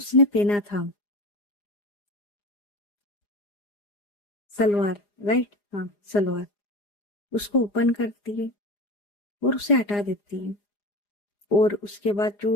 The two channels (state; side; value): late; right; 4.9 ms